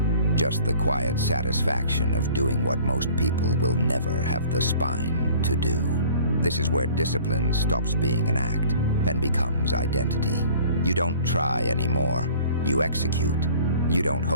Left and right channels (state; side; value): inverted; both; correlation -0.50